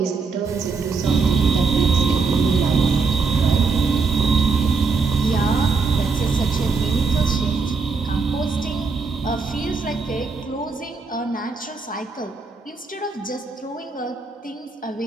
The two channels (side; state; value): left; quieter; 4.6 dB